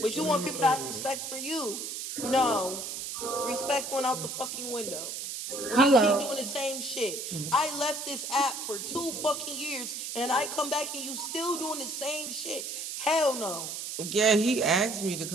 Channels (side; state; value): right; noise; hiss, 6 dB below the sound